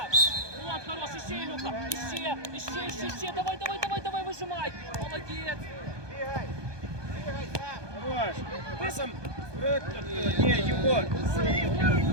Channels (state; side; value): late; left; 1.2 ms